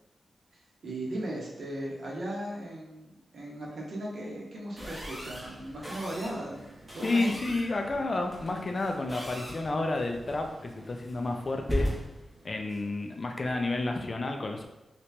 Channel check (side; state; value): both; normal; correlation 0.93